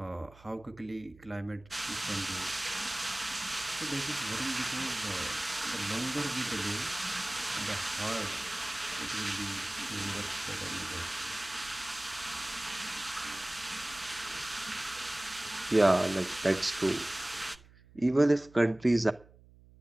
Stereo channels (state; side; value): noise; right; hum, 24 dB below the sound